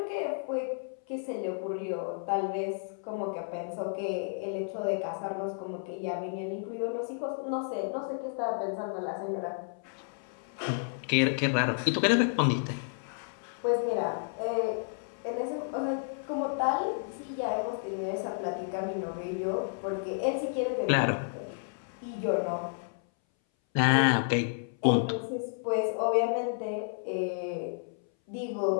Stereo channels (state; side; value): silent; right; 57 dB below the other